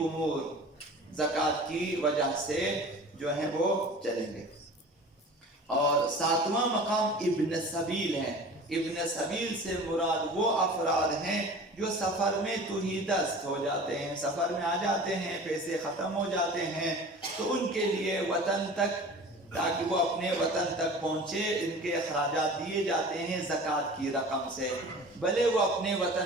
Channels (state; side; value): normal; both; correlation 0.40